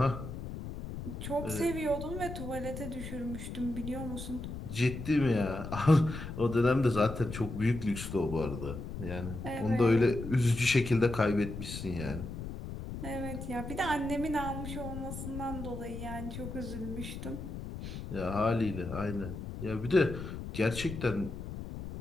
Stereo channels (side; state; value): left; noise; rumble, 8 dB below the sound